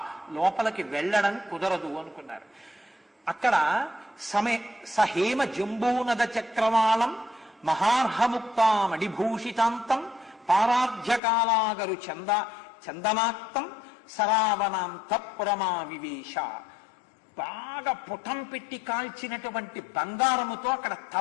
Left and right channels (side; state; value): right; drops out; at 11.2 s